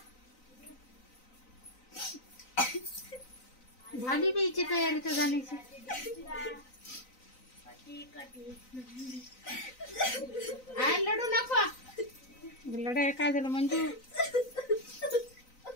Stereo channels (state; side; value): late; right; 3.9 ms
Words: झाली बीची तयारी तर जाण्याची. लढू नको. लढाई काय झालं मंजू?